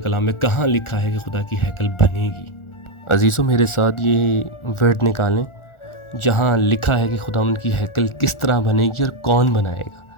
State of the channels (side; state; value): right; late; 1.4 ms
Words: میں کہاں لکھا ہے کہ خدا کی ہیکل بنے گی۔ عزیزوں، میرے ساتھ یہ ورڈ نکالیں جہاں لکھا ہے کہ خداوند کی ہیکل کس طرح بنے گی اور کون بنائے گا۔